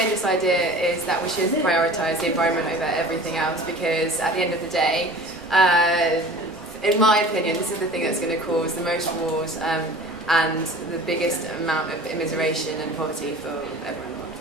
idea is that we should prioritise the environment over everything else, because at the end of the day, in my opinion, this is the thing that's going to cause the most wars and the biggest amount of immiseration and poverty for everyone.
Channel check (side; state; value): both; normal; correlation 0.42